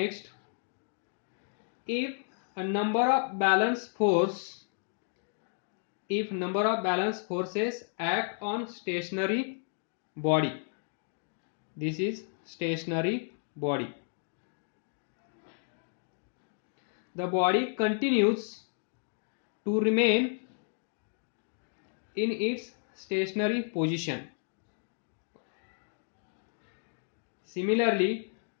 if number of balance forces act on stationary body, this is stationary body, the body continues to remain in its stationary position. Similarly,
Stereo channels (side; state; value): right; silent; 56 dB below the other